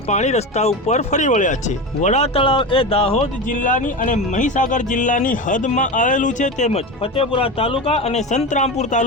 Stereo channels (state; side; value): normal; both; correlation 0.23